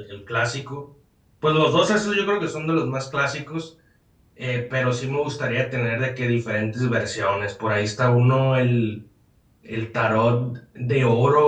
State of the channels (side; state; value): both; identical; correlation 1.00